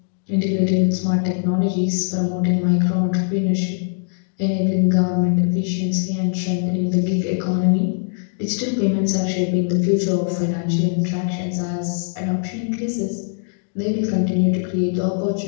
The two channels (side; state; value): right; silent; digital silence